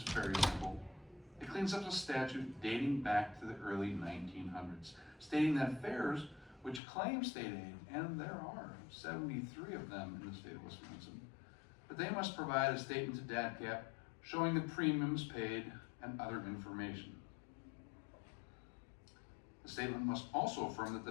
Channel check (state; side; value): drops out; right; at 6.8 s